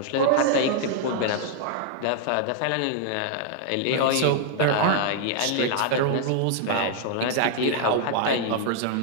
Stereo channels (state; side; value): different; both; correlation 0.00